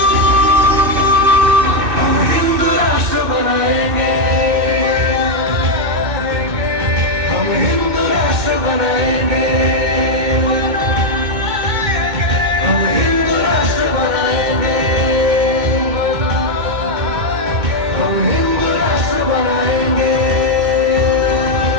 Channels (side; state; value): left; late; 2.6 ms